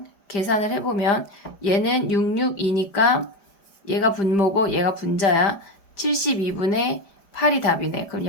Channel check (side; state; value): right; late; 4.9 ms